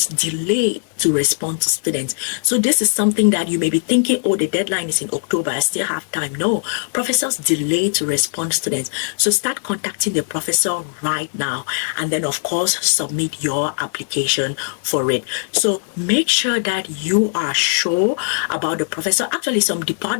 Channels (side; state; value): right; silent; digital silence